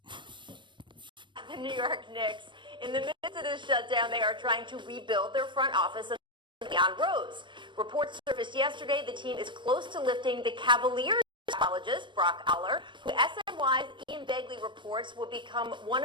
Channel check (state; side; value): late; left; 0.23 ms